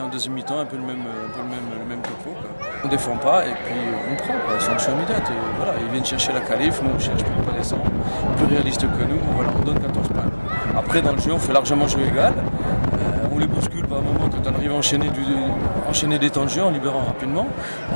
deuxième mi-temps, un peu le même topo, quoi. On ne défend pas et puis on prend, quoi. Sanction immédiate. Voilà, ils viennent chercher la qualif, nous on cherche pour pas descendre. Plus réaliste que nous, voilà, on donne 14 points. Après dans le jeu, on fait largement jeu égal. On les bouscule par moment quand on arrive à enchaîner des temps de jeu en libérant rapidement,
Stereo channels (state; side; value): inverted; both; correlation -1.00